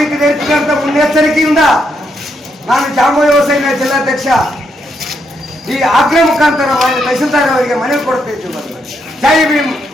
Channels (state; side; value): normal; both; correlation 0.78